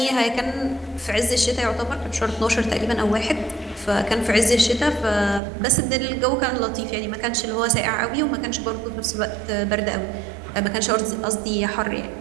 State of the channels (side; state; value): left; drops out; at 5.4 s